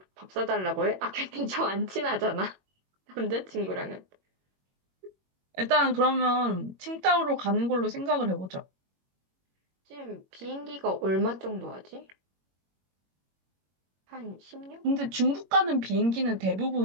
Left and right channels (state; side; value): late; left; 21 ms